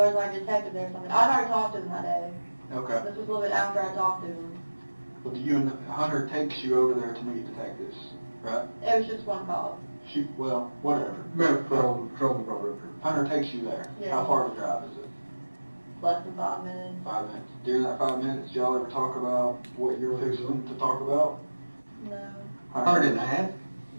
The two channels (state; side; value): inverted; both; correlation -1.00